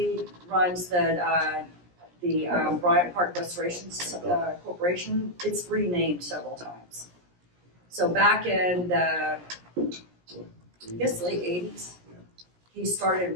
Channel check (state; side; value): late; left; 17 ms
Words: runs the Bryant Park Restoration Corporation. It's renamed several times. So back in the, I guess, late 80s, he started